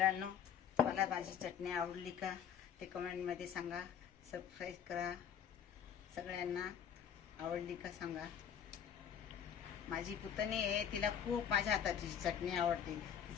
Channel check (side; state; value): right; quieter; 8.6 dB